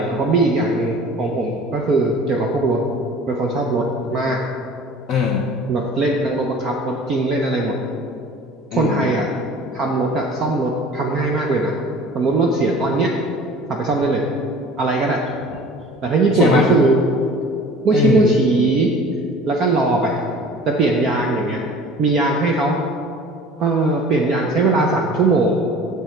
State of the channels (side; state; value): both; normal; correlation 0.45